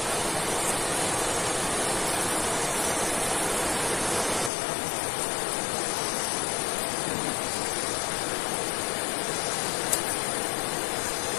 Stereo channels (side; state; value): right; drops out; at 4.5 s